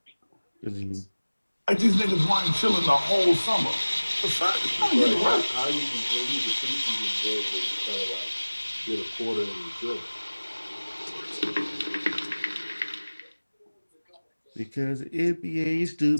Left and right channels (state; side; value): inverted; both; correlation -1.00